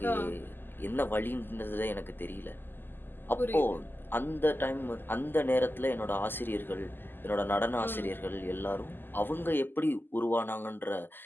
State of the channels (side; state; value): right; late; 0.094 ms